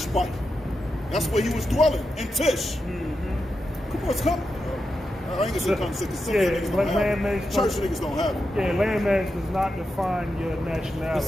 That's where he was dwelling, in Tish. Come on, come. I ain't gonna say come sick, because some niggas don't have it. Church niggas don't have it. Yeah, landmass does not define your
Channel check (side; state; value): both; normal; correlation 0.88